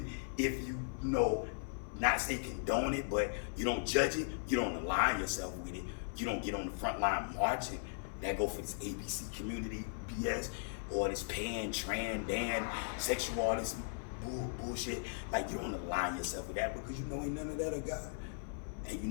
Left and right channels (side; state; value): right; silent; 53 dB below the other